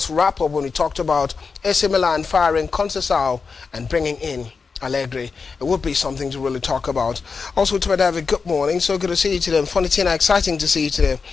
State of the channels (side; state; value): right; quieter; 5.0 dB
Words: Wrap-Up when we talked about AC Milan firing Conceição and bringing in Allegri. It would be something to really talk about. Also, to David, good morning. So good to see you today. Funny Tina, exciting to see you today.